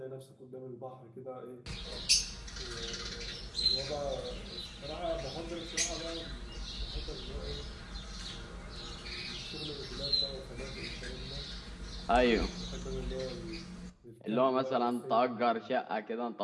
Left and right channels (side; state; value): both; identical; correlation 1.00